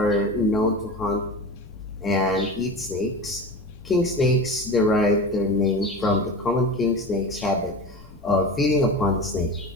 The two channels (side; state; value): left; noise; rumble, 21 dB below the sound